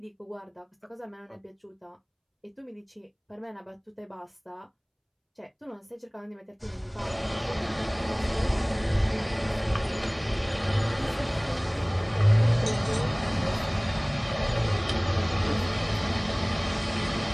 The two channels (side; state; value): both; identical; correlation 1.00